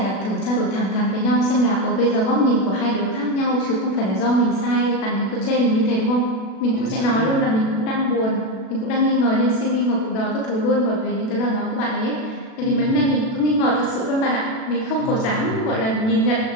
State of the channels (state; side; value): late; right; 36 ms